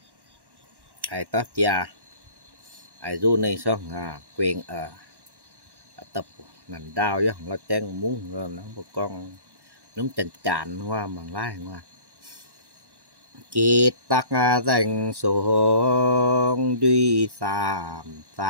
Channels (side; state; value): left; late; 1.1 ms